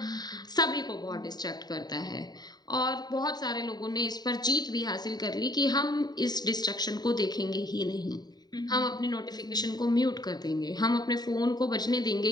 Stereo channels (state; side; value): late; right; 0.20 ms